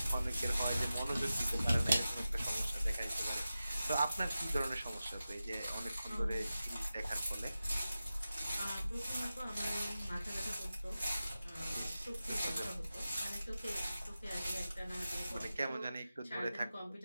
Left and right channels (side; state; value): both; inverted; correlation -0.93